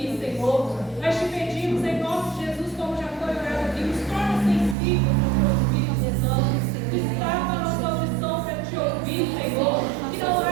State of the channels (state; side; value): drops out; left; at 4.8 s